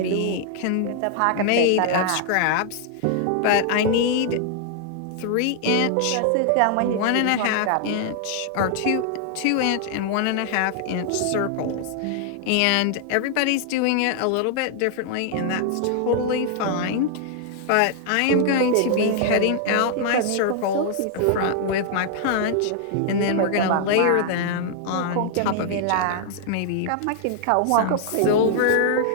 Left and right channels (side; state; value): both; different; correlation -0.01